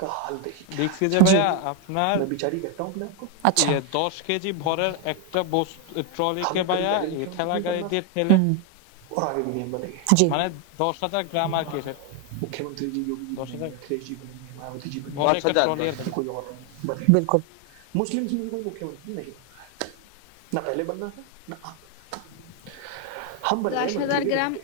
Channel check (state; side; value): different; both; correlation 0.01